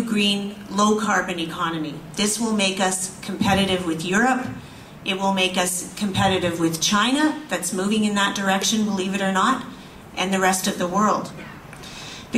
green, low-carbon economy. This will make us competitive with Europe. It will make us competitive with China, that's moving in that direction, believe it or not, and the rest of the world.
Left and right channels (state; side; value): identical; both; correlation 1.00